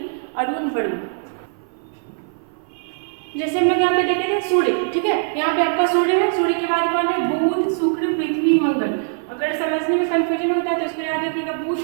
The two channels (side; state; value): left; silent; 56 dB below the other